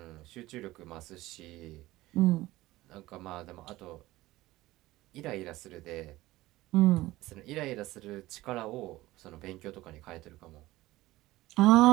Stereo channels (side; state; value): left; quieter; 17.7 dB